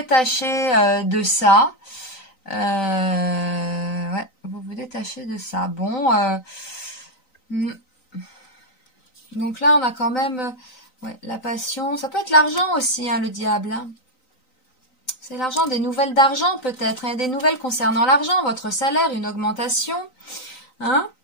de ça. Ouais, vous vous détachez de ça. Bon, donc là, on a quand même ouais, la passion. Ça peut être l'argent aussi, hein, le diable. Hein. C'est l'argent, des nouvelles d'argent peut-être, hein, des nouvelles concernant l'argent, votre salaire, une augmentation. Hein.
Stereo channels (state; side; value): late; right; 3.9 ms